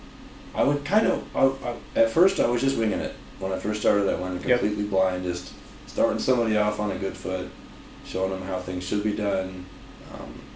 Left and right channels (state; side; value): identical; both; correlation 1.00